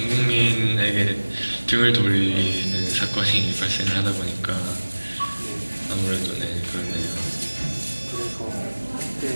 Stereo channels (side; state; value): both; inverted; correlation -1.00